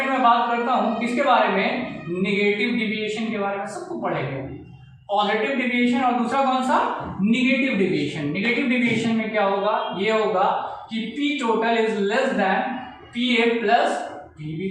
में बात करता हूं किसके बारे में, नेगेटिव डिविएशन के बारे में, सबको पढ़ेंगे। पॉजिटिव डिविएशन और दूसरा कौन सा, नेगेटिव डिविएशन। नेगेटिव डिविएशन में क्या होगा, ये होगा कि P total is less than PA plus PB।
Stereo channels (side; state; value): both; identical; correlation 1.00